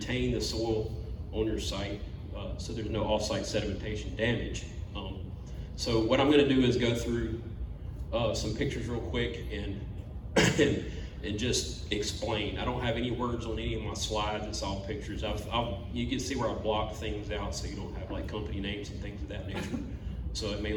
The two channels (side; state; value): both; identical; correlation 1.00